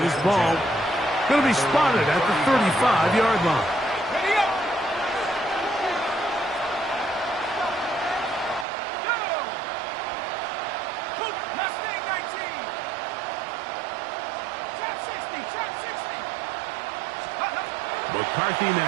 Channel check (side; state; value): left; drops out; at 8.7 s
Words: ball going to be spotted at the 35-yard line. McCarthy